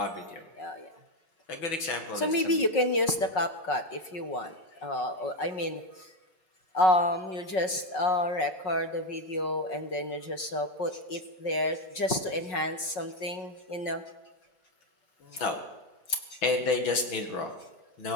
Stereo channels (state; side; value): late; right; 5.4 ms